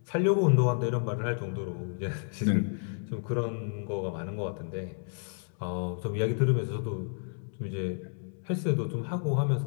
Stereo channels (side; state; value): right; silent; 57 dB below the other